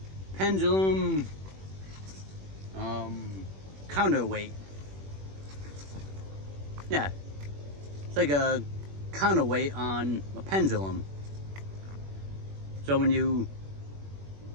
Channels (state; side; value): late; left; 21 ms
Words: pendulum counterweight. Yeah, it's like a counterweight on a pendulum. So when you